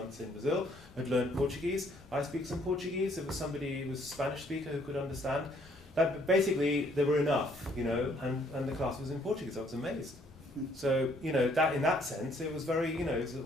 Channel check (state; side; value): normal; both; correlation 0.65